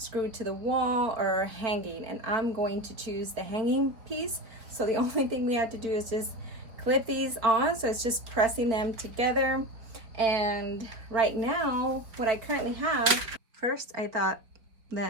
to the wall, or hanging. And I'm going to choose the hanging piece. So the only thing we have to do is just clip these on. So it's just pressing them together. And right now, what I currently have, first I thought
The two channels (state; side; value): late; left; 4.3 ms